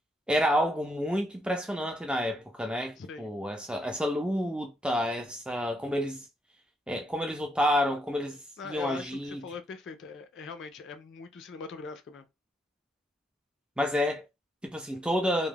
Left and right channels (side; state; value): both; normal; correlation 0.77